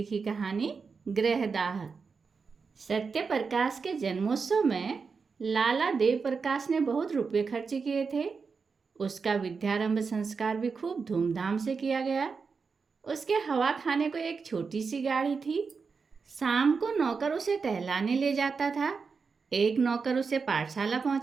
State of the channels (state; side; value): quieter; left; 5.1 dB